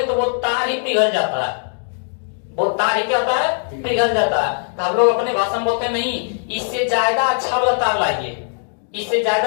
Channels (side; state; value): right; silent; digital silence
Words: तो वो तार ही पिघल जाता है, वो तार ही क्या होता है? पिघल जाता है। तो हम लोग अपने भाषा में बोलते हैं नहीं, इससे ज्यादा अच्छा वाला तार लाइए, इससे